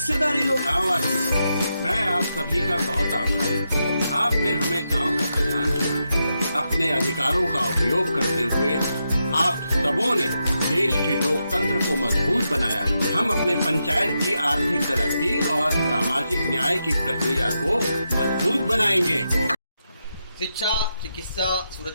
लो। मैं आप सभी का बहुत आभारी हूँ। आपने हमें गांव का प्रधान चुना। अपने अधिकारों का उपयोग करते हुए आप सबों ने देश के लोकतंत्र को मजबूत बनाया। हम अपने पंचायत की आर्थिक तरक्की और सामाजिक न्याय की प्रक्रिया को मजबूत बनाएंगे। शिक्षा, चिकित्सा,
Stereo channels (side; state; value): both; inverted; correlation -0.85